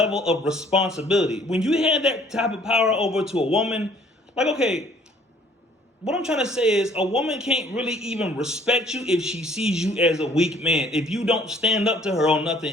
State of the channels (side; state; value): both; normal; correlation 0.58